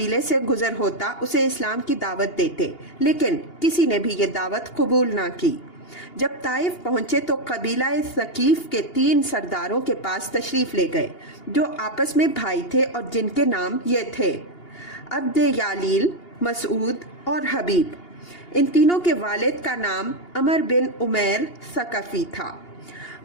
سے گزر ہوتا اسے اسلام کی دعوت دیتے، لیکن کسی نے بھی یہ دعوت قبول نہ کی۔ جب طائف پہنچے تو قبیلہ ثقیف کے 3 سرداروں کے پاس تشریف لے گئے جو آپس میں بھائی تھے اور جن کے نام یہ تھے عبد یالیل، مسعود اور حبیب۔ ان تینوں کے والد کا نام عمر بن عمیر ثقفی تھا۔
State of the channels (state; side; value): late; right; 2.8 ms